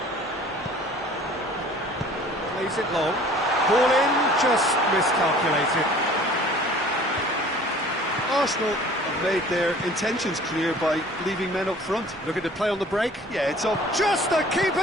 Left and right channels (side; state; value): both; normal; correlation 0.49